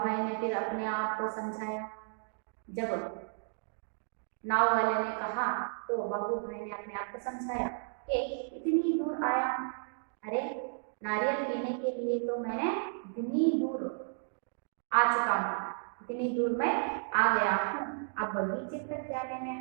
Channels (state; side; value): silent; left; digital silence